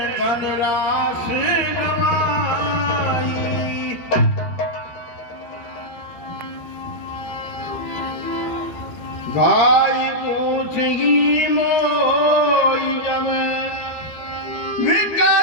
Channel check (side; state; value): right; late; 13 ms